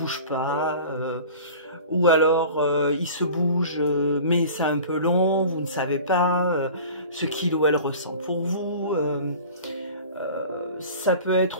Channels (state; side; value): inverted; both; correlation -0.41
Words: pas, ou alors il se bouge, mais c'est un peu long, vous ne savez pas ce qu'il ou elle ressent pour vous. Ça peut